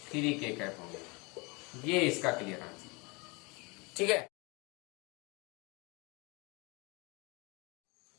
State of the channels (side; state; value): right; quieter; 28.0 dB